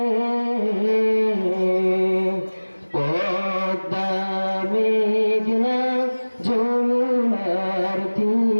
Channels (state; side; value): inverted; both; correlation -1.00